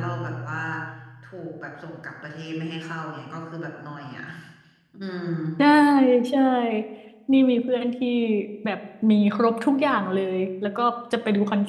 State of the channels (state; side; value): identical; both; correlation 1.00